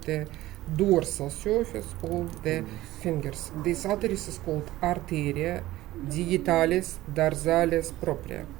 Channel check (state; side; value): quieter; left; 16.4 dB